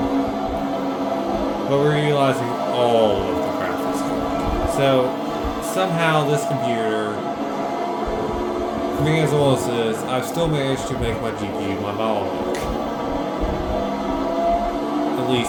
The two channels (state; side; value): identical; both; correlation 1.00